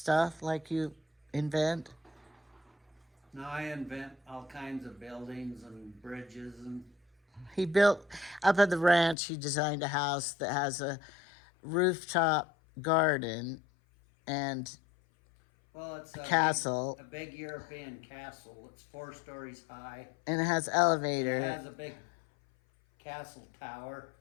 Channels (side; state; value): right; drops out; at 9.2 s